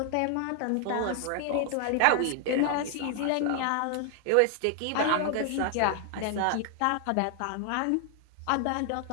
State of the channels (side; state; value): both; different; correlation 0.00